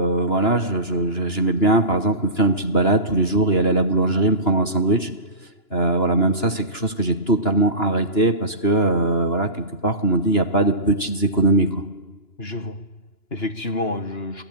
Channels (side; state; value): right; late; 2.9 ms